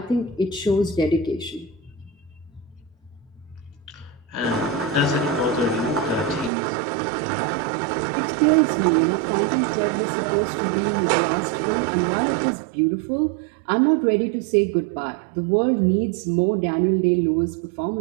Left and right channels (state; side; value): drops out; left; at 6.5 s